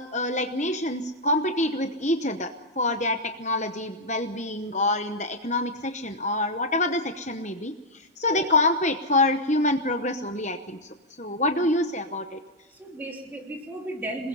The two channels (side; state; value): both; normal; correlation -0.01